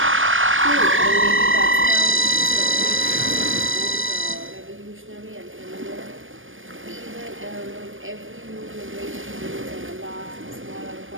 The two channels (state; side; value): late; left; 0.58 ms